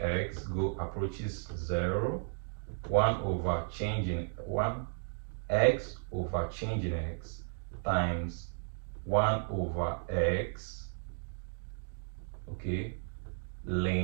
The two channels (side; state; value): left; silent; digital silence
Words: approaches 0, 1 over change in 1 x over change in x times 1 over x, okay,